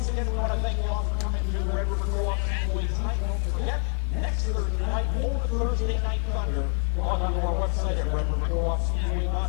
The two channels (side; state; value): right; quieter; 39.8 dB